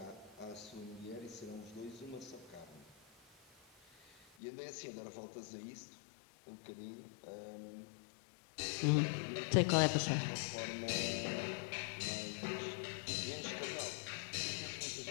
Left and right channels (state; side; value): drops out; right; at 4.2 s